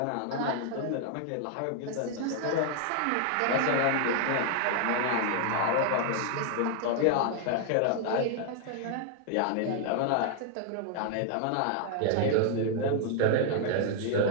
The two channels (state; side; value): different; both; correlation 0.00